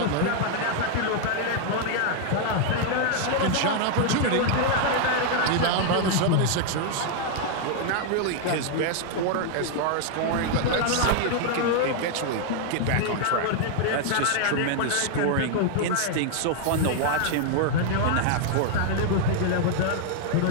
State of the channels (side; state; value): both; different; correlation 0.00